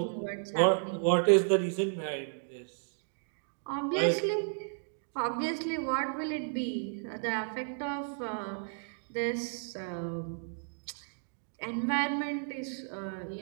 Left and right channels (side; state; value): left; silent; digital silence